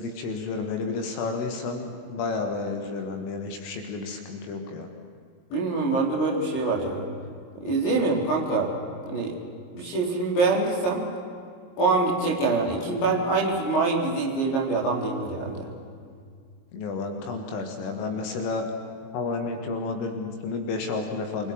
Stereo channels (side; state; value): right; late; 22 ms